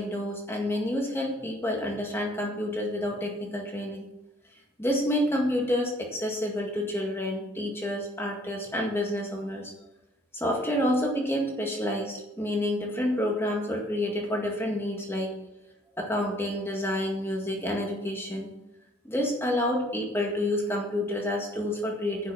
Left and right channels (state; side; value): normal; both; correlation 0.60